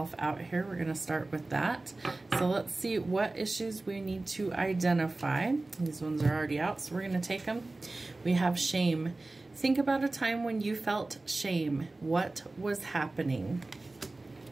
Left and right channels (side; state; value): left; quieter; 3.1 dB